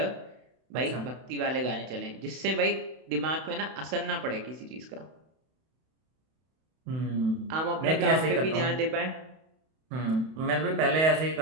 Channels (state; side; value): late; left; 31 ms